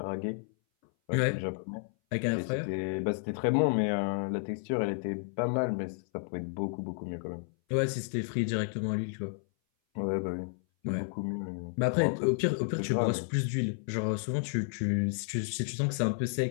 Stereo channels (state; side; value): silent; right; 57 dB below the other